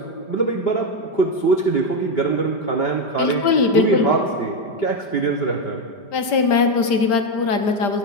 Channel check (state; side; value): late; right; 5.1 ms